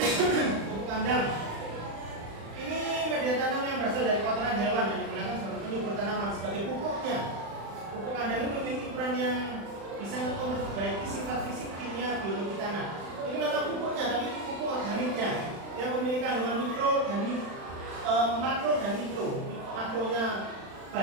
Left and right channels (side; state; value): left; late; 35 ms